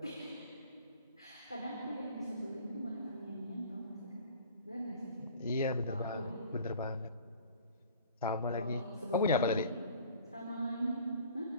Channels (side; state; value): both; inverted; correlation -0.48